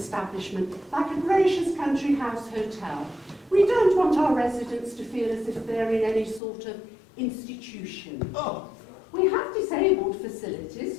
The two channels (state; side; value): drops out; right; at 6.4 s